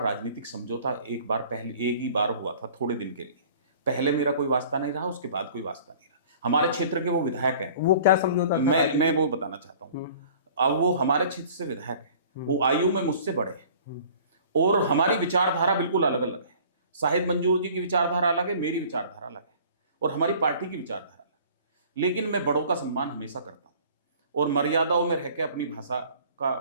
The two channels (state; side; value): inverted; both; correlation -0.49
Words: समझौता एक बार पहले, एक ही बार हुआ था थोड़े दिन के लिए। पहले मेरा कोई वास्ता नहीं रहा, उसके बाद कोई वास्ता नहीं रहा। हमारे क्षेत्र के वो विधायक हैं। वो क्या समझौता था? मैं वो बताना चाहता हूँ। अब वो हमारे क्षेत्र से विधायक है, वो आयु में मुझसे बड़े हैं और हमारी विचारधारा बिल्कुल अलग अलग है। शाहिद मंजूर जी की विचारधारा अलग है, मेरी विचारधारा अलग है और हमारी पार्टी की विचारधारा अलग है। लेकिन मैं बड़ों का सम्मान हमेशा करता हूँ और मर्यादाओं में रहकर अपनी भाषा का